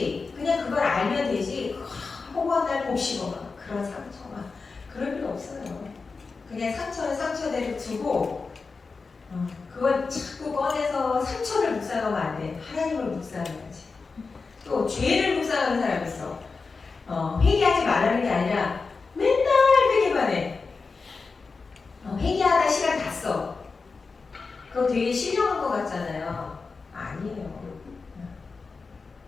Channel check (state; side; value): quieter; right; 4.4 dB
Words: 그냥 그걸 알면 되지, 호건날 곱씹어 그런 상처가 그럴 필요 없어요. 그냥 상처는 상처대로 두고 그걸 자꾸 꺼내서 상처를 묵상하면 안 돼. 하나님을 묵상해야지. 또 죄를 묵상하는 사람이 있어. 회개하지 말라는 게 아니라 맨날 회개만 해. 회개하다 시간 다 써. 그거 되게 신령한 것 같잖아요. 아니에요.